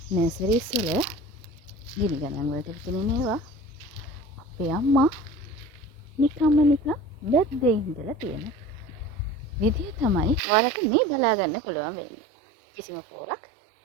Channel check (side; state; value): left; drops out; at 10.4 s